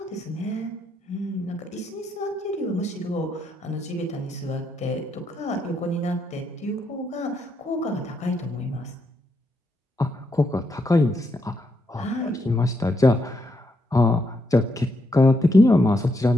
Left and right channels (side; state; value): both; normal; correlation 0.79